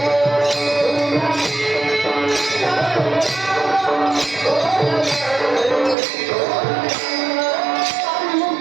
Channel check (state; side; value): drops out; left; at 6.0 s